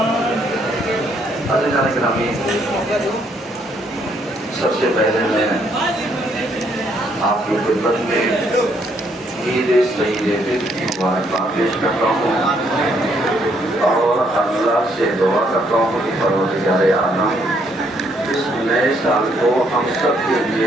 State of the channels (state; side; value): normal; both; correlation 0.70